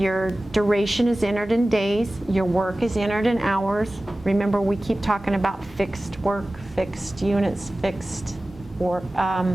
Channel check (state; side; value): normal; both; correlation 0.97